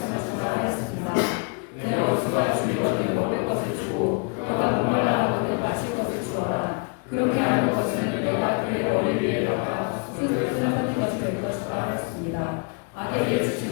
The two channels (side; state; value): right; quieter; 36.8 dB